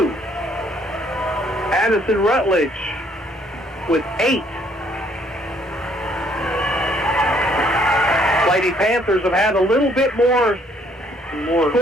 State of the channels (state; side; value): normal; both; correlation 0.65